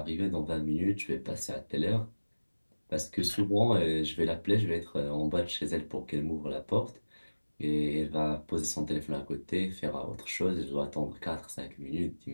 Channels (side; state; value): both; inverted; correlation -1.00